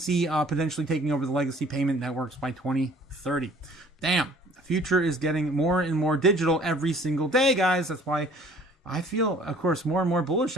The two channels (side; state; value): both; normal; correlation 0.53